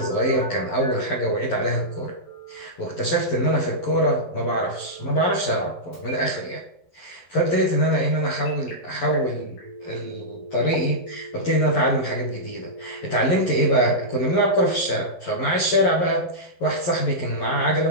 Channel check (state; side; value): late; right; 11 ms